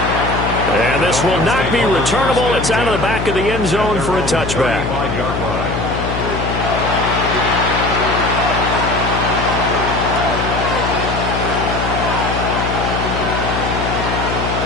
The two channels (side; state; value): left; noise; hum, 4 dB below the sound